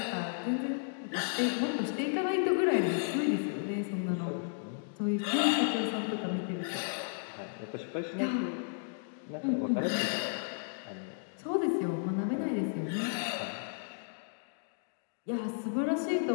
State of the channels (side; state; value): right; silent; digital silence